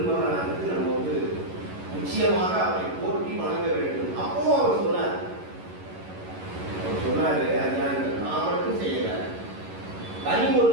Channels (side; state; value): left; late; 11 ms